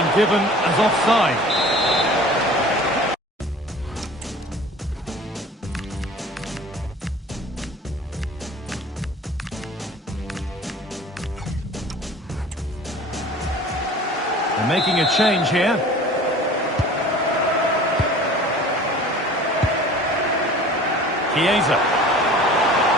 given as offside. They're making a change here. Chiesa.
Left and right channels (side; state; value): both; normal; correlation 0.44